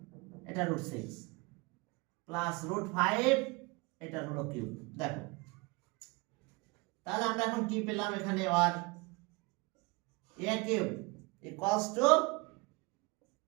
এটা √6 প্লাস √5, এটা হলো কিউব। দেখো তাহলে আমরা এখন কি পেলাম এখানে, আর a cube equals two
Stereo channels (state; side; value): quieter; left; 26.8 dB